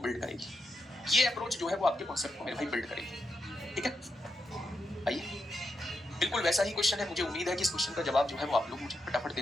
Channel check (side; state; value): both; normal; correlation 0.84